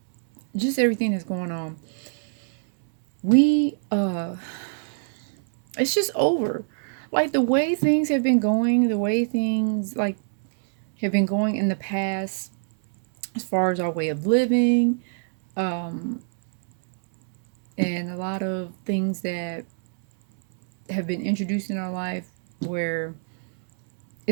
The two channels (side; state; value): left; silent; digital silence